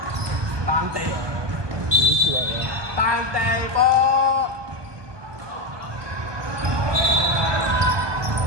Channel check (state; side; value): late; left; 1.2 ms